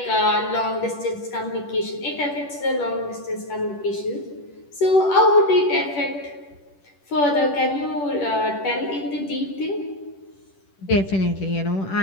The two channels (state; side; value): late; right; 10 ms